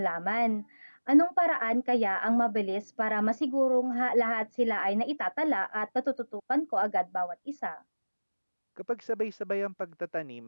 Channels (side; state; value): both; inverted; correlation -1.00